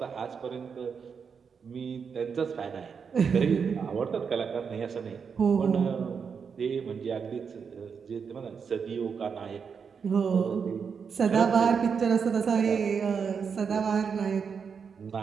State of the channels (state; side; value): quieter; left; 6.2 dB